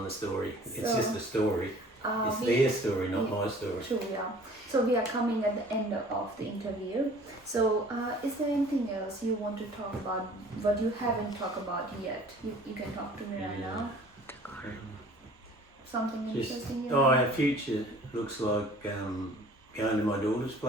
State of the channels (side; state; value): both; normal; correlation 0.50